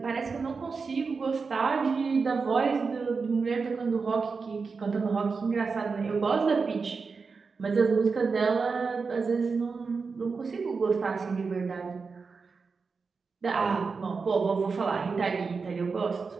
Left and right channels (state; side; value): quieter; left; 4.8 dB